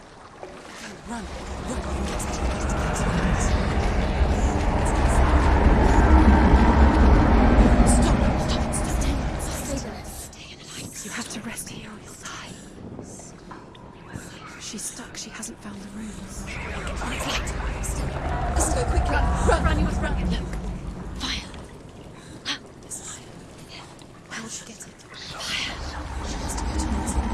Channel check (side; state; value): both; identical; correlation 1.00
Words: Run. You have to rest here or you'll die. She's stuck. She hasn't found the rooms. Let's go quickly. Run, you must run. Look. Fire. There's fire. How will she get it? Fire. She has to go towards it.